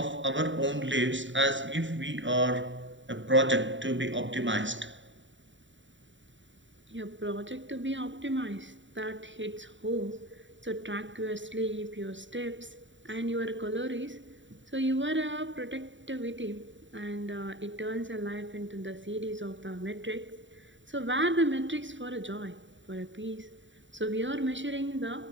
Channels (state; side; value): late; left; 0.55 ms